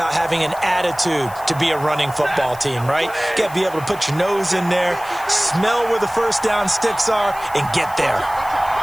having an attitude to be a running football team, right? You got to be able to put your nose in there, smell where the 1st down sticks are, and get there.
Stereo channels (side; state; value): left; noise; hiss, 19 dB below the sound